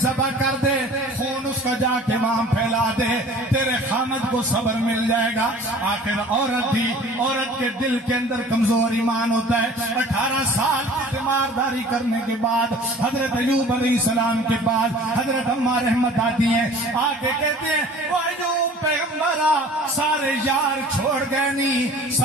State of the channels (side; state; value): both; normal; correlation 0.46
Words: ذبح کر دے، خون اس کا جا کے وہاں پھیلا دے، تیرے خامد کو صبر مل جائے گا۔ آخر عورت تھی، عورت کے دل کے اندر کمزور ایمان ہوتا ہے۔ 18 سال کی تیمارداری کرنے کے بعد حضرت ایوب علیہ السلام کے بعد حضرت اماں رحمت آتی ہیں، آ کے کہتے ہیں وہ ایوب پیغمبرہ سارے یار چھوڑ گئے نہیں،